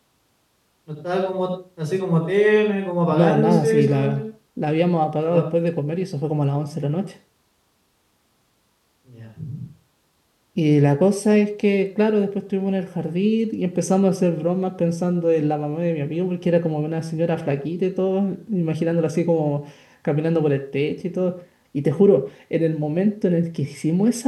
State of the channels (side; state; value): both; identical; correlation 1.00